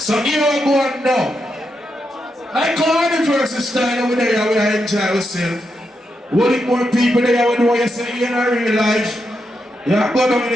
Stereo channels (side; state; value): both; normal; correlation 0.84